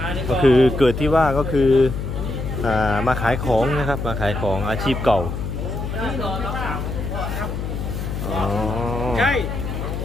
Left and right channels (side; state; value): left; noise; hum, 4 dB below the sound